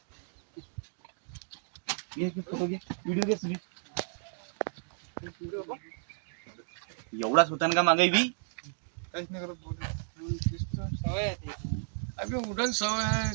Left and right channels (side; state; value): left; silent; digital silence